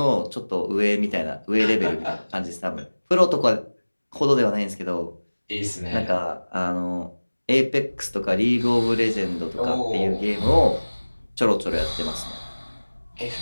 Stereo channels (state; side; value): inverted; both; correlation -1.00